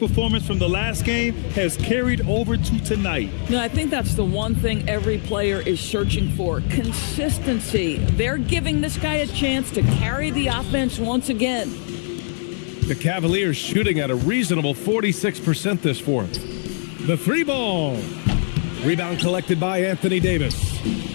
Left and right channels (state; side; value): silent; right; digital silence